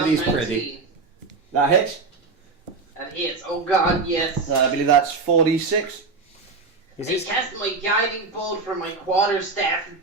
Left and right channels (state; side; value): quieter; left; 4.2 dB